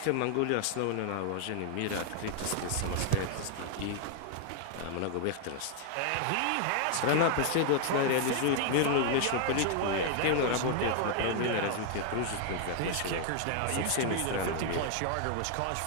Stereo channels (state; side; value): different; both; correlation 0.00